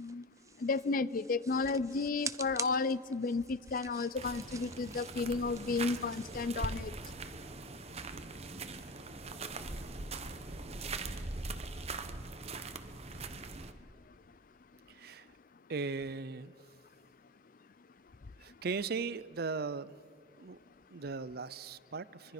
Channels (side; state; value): both; normal; correlation 0.24